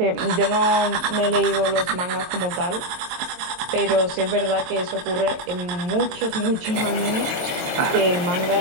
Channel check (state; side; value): late; left; 22 ms